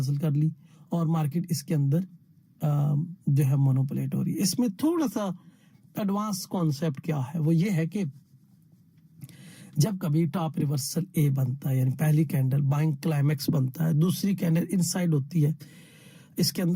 कर ली और मार्केट इसके अंदर जो है मोनोपोलेट हो रही है। इसमें थोड़ा सा एडवांस कॉन्सेप्ट क्या है, वो ये है कि जब कभी टॉप रिवर्सल ए बनता है यानी पहली कैंडल बाइंग क्लाइमेक्स बनता है, दूसरी कैंडल इनसाइड होती है, इसके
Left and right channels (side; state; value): both; identical; correlation 1.00